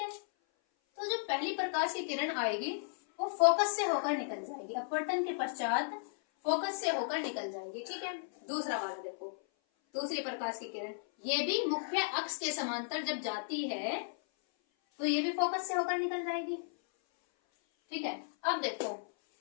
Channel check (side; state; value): right; silent; 55 dB below the other